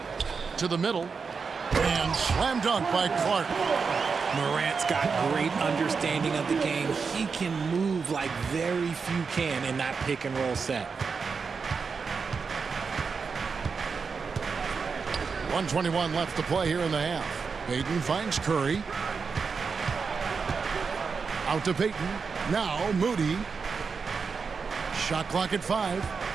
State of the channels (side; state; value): left; quieter; 5.3 dB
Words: to the middle. And slam dunk by Clark. Morant's got great understanding of the game. He can move like very few can in that pick and roll set. 1:21 left to play here in the half. Payton finds Curry. Out to Payton. Now Moody. Shot clock at 5.